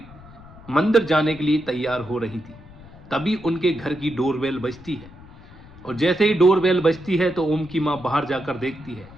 मंदिर जाने के लिए तैयार हो रही थी। तभी उनके घर की डोरबेल बजती है और जैसे ही डोरबेल बजती है तो ओम की माँ बाहर जाकर देखती है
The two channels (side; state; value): left; noise; rumble, 20 dB below the sound